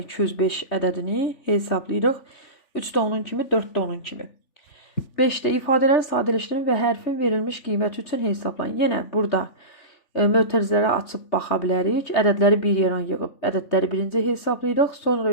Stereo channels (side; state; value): right; late; 3.4 ms